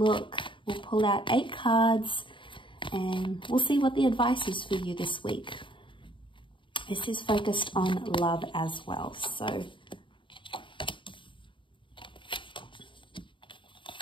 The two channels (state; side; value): late; right; 0.24 ms